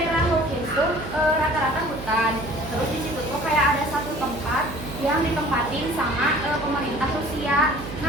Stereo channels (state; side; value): noise; right; hum, 11 dB below the sound